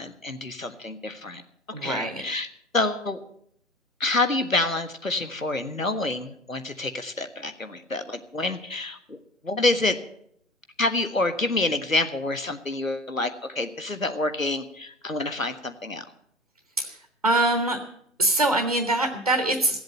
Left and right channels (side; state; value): both; normal; correlation 0.38